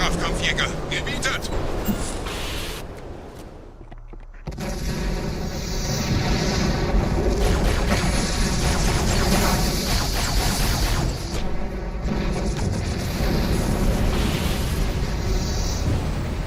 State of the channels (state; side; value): identical; both; correlation 1.00